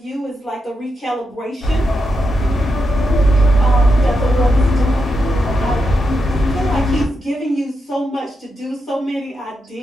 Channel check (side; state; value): both; normal; correlation 0.85